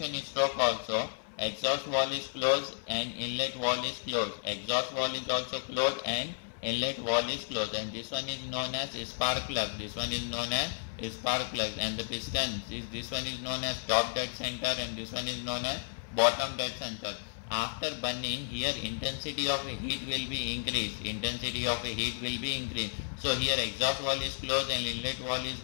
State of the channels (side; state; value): right; silent; 56 dB below the other